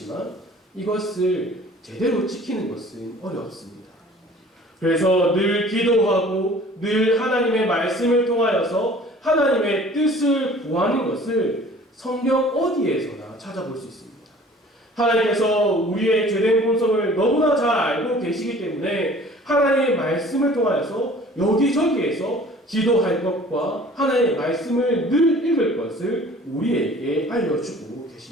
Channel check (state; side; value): normal; both; correlation 0.49